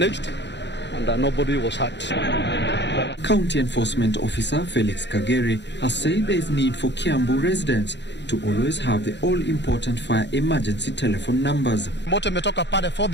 and nobody was hurt. County Enforcement Officer Felix Kagere has said there is need for Kiambu residents to always have the all-important fire emergency telephone numbers. Moto imetoka pale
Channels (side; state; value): right; late; 0.51 ms